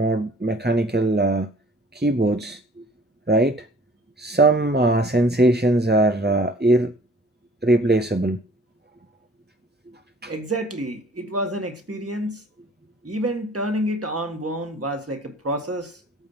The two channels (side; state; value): both; normal; correlation 0.52